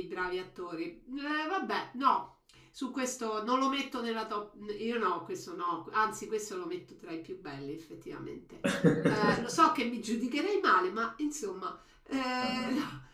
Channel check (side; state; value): both; identical; correlation 1.00